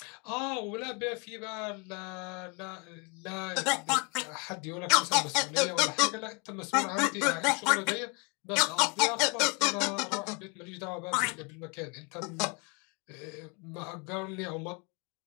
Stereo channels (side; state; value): right; quieter; 32.8 dB